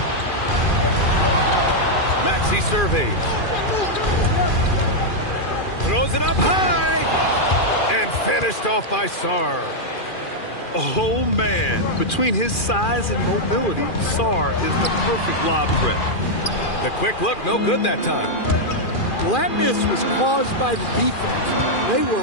Maxey surveys. Throws it up high. And finished off by Sarr. Oh, man. Between his size and mobility, Sarr is the perfect lob threat. The quick look, no good that time. Well, that miss was caused by the defense. They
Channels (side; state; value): right; late; 2.4 ms